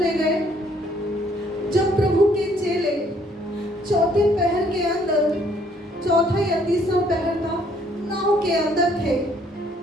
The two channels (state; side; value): normal; both; correlation 0.64